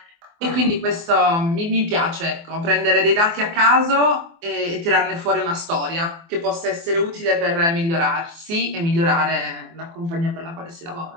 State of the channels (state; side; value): late; left; 24 ms